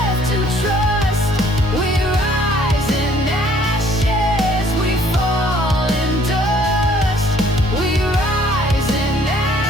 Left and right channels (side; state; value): both; normal; correlation 0.60